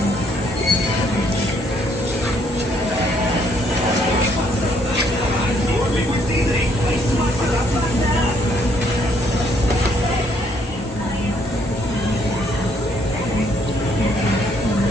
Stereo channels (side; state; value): both; normal; correlation 0.68